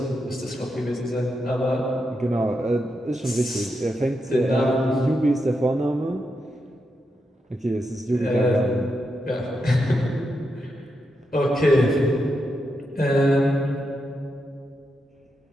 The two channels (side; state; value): both; normal; correlation 0.85